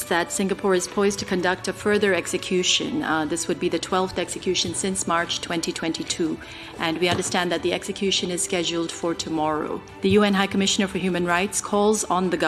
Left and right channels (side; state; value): both; identical; correlation 1.00